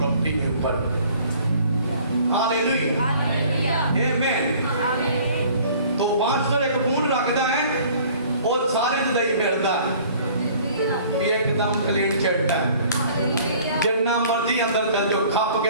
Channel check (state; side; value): inverted; both; correlation -0.52